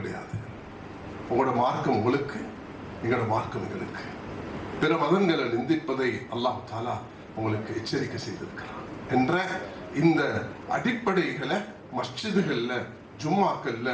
உங்களோட மார்க்கம் உங்களுக்கு, எங்களோட மார்க்கம் எங்களுக்கு. பிற மதங்களை நிந்திப்பதை அல்லாஹ் தாலா உங்களுக்கு எச்சரிக்கை செய்திருக்கிறான் என்ற இந்த அடிப்படைகளை மஸ்ஜிதுகள்ல, ஜும்மாக்கள்ல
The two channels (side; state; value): both; identical; correlation 1.00